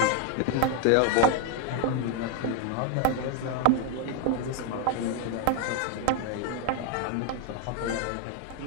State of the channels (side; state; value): both; different; correlation 0.01